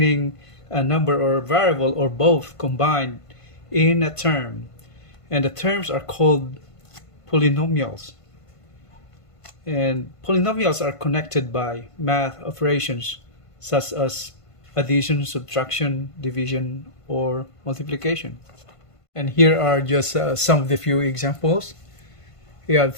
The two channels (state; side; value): late; right; 1.5 ms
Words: a number or variable or both combined in a term, and the terms are called polynomials. And polynomials are connected by math operations such as addition, subtraction, division, or multiplication. And here are just some of the few examples. We have